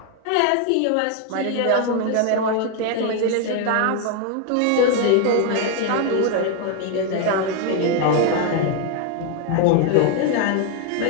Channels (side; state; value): both; different; correlation 0.01